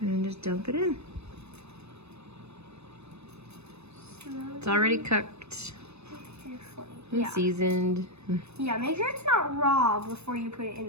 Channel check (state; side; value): late; left; 0.80 ms